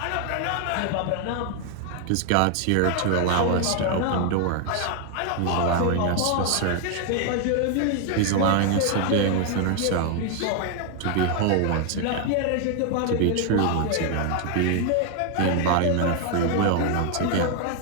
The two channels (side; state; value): both; different; correlation 0.00